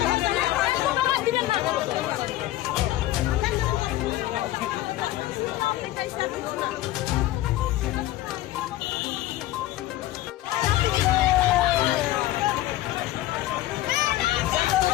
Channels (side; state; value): right; quieter; 15.6 dB